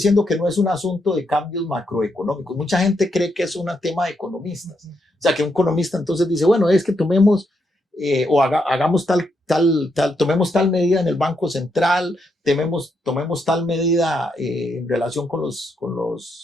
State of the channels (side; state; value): both; normal; correlation 0.79